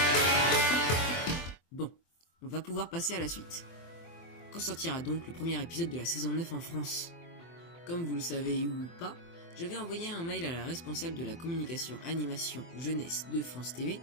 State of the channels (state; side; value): late; right; 24 ms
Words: Bon, on va pouvoir passer à la suite. Quand sortira donc le premier épisode de la saison 9 en France? Comme vous le savez ou pas, j'avais envoyé un mail à la responsable de la communication animation jeunesse de France TV